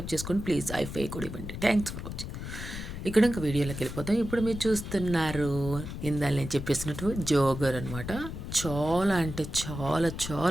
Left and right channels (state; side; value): noise; left; rumble, 8 dB below the sound